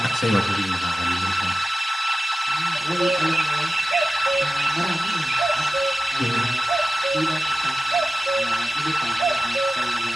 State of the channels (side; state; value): both; normal; correlation 0.95